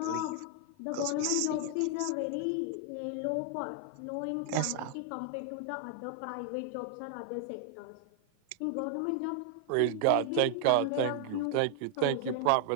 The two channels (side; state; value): both; different; correlation 0.00